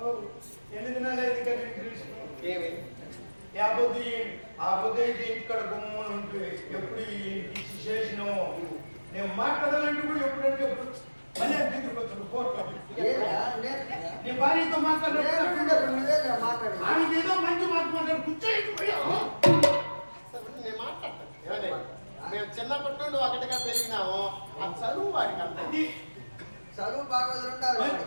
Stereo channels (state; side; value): inverted; both; correlation -1.00